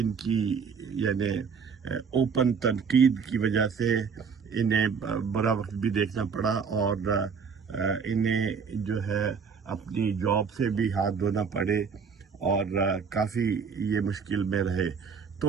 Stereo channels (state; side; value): quieter; left; 6.0 dB